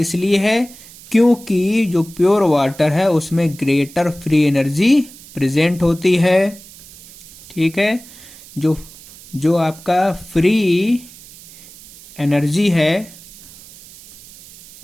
है क्योंकि जो प्योर वाटर है उसमें ग्रेटर फ्री एनर्जी प्रेजेंट होती है, ठीक है। जो आपका फ्री एनर्जी है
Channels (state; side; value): noise; right; hiss, 20 dB below the sound